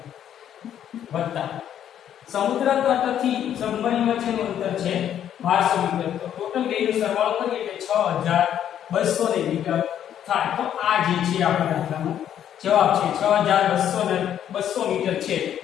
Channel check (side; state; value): right; quieter; 10.1 dB